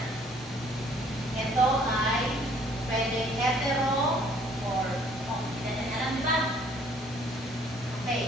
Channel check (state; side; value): normal; both; correlation 0.60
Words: ito ay pwede hetero or hindi natin alam, di ba?